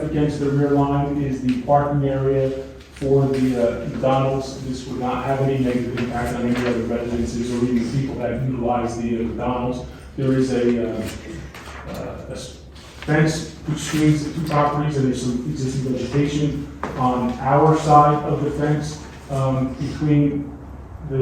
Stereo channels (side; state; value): both; identical; correlation 1.00